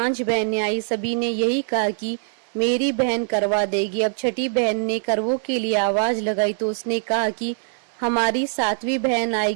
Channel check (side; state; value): left; silent; digital silence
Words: बहनें आई, सभी ने यही कहा कि मेरी बहन करवा देगी। अब छठी बहन ने करवों के लिए आवाज लगाई तो उसने कहा कि हमारी 7वीं बहन